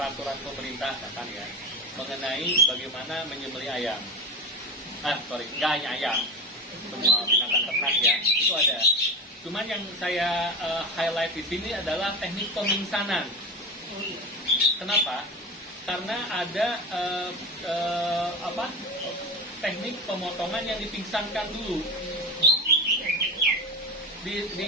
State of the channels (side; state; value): both; normal; correlation 0.24